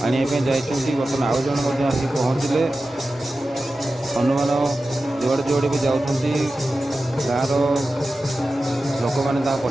ଆଣିବା ପାଇଁ ଯାଇଛନ୍ତି। ବର୍ତ୍ତମାନ ଆଉ ଜଣେ ମଧ୍ୟ ଆସି ପହଞ୍ଚିଲେ। ହନୁମାନ ଯୁଆଡ଼େ ଯୁଆଡ଼େ ବି ଯାଉଛନ୍ତି, ଗାଁର ଲୋକମାନେ ତାଙ୍କ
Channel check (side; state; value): both; normal; correlation 0.94